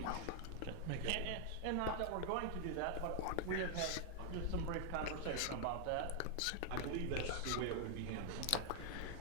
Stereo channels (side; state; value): both; different; correlation 0.00